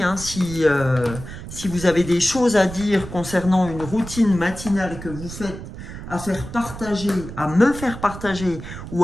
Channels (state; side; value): noise; right; rumble, 11 dB below the sound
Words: hein, si vous avez des choses à dire concernant une routine matinale que vous faites, à faire partager, à me faire partager